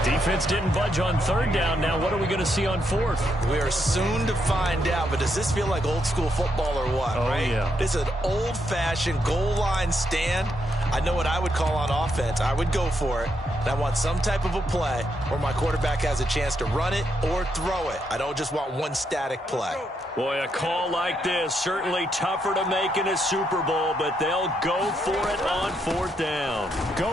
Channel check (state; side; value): normal; both; correlation 0.79